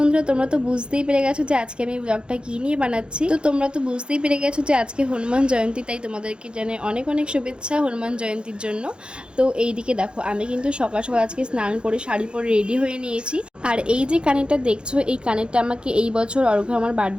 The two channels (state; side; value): late; left; 0.053 ms